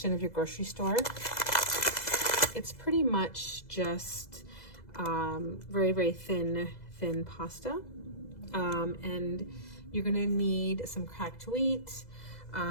of your grocery store. It's pretty much just very, very thin pasta. And you're gonna need some cracked wheat,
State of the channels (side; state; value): right; late; 2.0 ms